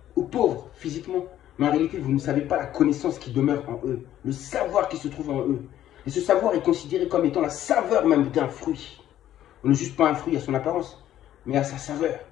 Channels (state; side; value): quieter; right; 12.1 dB